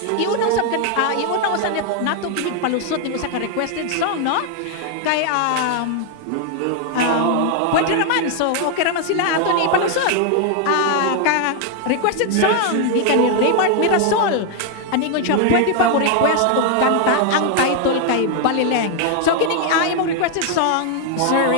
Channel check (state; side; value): different; both; correlation 0.00